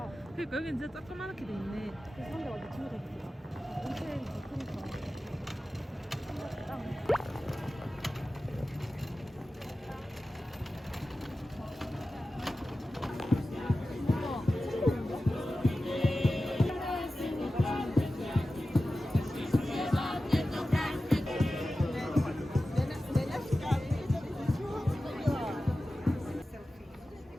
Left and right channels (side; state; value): both; normal; correlation 0.94